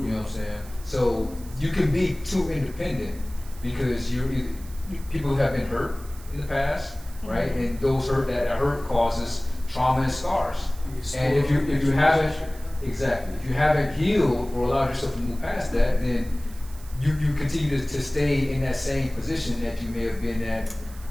what I'm saying? So you can be too independent because people have been hurt in the past, right? And those hurt causes trauma and scars. And if you haven't healed or allowed yourself to move past that, then you continue to stay in that same position that you may have been at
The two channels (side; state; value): right; noise; hiss, 21 dB below the sound